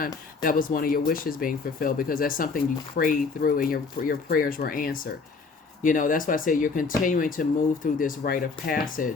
That was one of your wishes being fulfilled, because that's something you prayed through and your prayers were answered. That's why I say you're continuing to move through this rite of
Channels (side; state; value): right; quieter; 4.6 dB